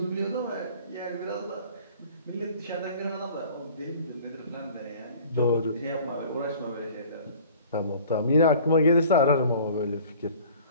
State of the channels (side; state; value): both; inverted; correlation -0.48